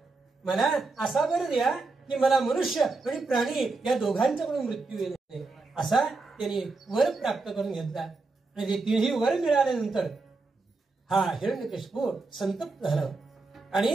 मला असा वर द्या की मला मनुष्य आणि प्राणी या दोघांच्याकडून मृत्यू येत नाही. असा त्यांनी वर प्राप्त करून घेतला. आणि ते तिन्ही वर मिळाल्यानंतर हा हिरण्यकशिपू संतप्त झाला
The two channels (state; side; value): quieter; left; 3.7 dB